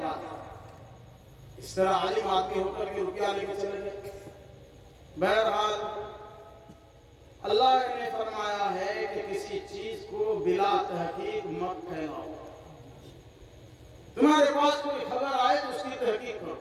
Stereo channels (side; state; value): both; identical; correlation 1.00